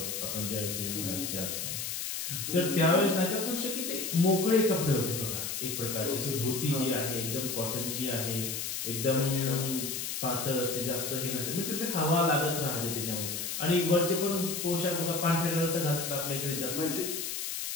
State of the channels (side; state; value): left; noise; hiss, 3 dB below the sound